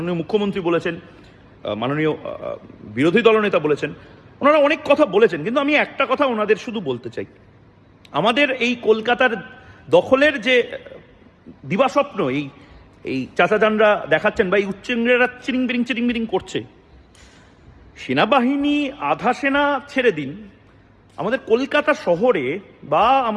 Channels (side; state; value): both; identical; correlation 1.00